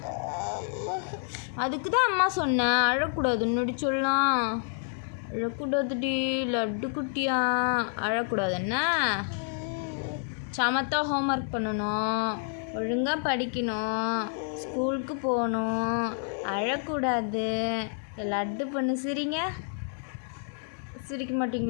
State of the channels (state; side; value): silent; right; 59 dB below the other